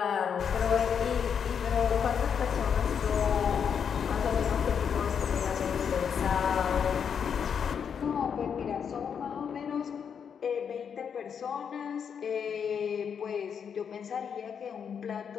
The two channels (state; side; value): quieter; right; 7.3 dB